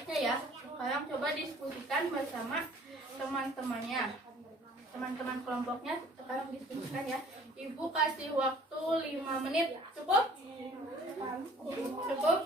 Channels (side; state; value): both; normal; correlation 0.53